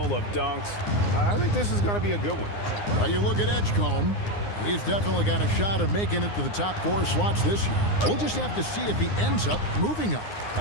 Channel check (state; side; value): late; right; 9.7 ms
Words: of dunks. I think this is going to be a good one. Well, you look at Edgecombe. He's definitely got a shot of making it to the top 4 slots this year. We'll just have to see if he ends up moving up.